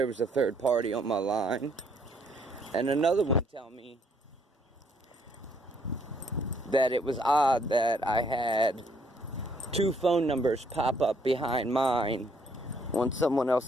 was a third party on my line. And another one tell me that it was odd that I had two phone numbers pop up behind mine on someone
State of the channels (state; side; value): normal; both; correlation 0.67